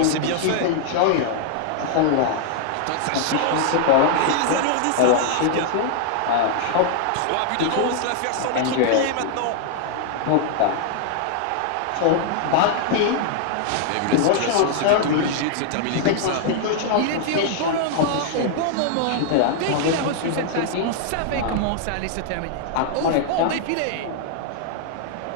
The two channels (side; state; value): both; different; correlation 0.00